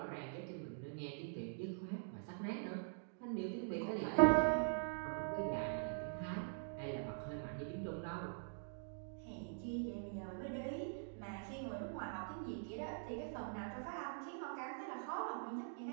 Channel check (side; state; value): left; silent; digital silence